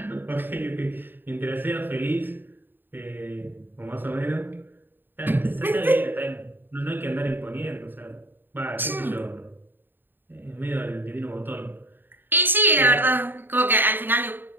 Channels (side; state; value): left; late; 0.095 ms